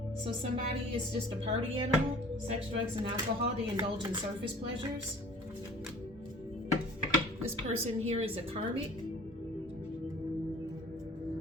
So somebody is just a party animal. Sex, drugs, and alcohol. They indulge in surface pleasures. This person here is a karmic.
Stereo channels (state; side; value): normal; both; correlation 0.47